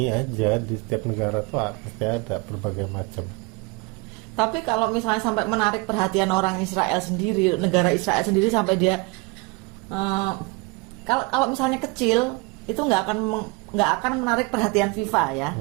aja, di setiap negara tuh pasti ada berbagai macam. Tapi kalau misalnya sampai menarik perhatian orang Israel sendiri, negara Israel sendiri, sampai dia kalau misalnya kecil itu nggak akan menarik perhatian FIFA ya.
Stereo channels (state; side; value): quieter; left; 26.7 dB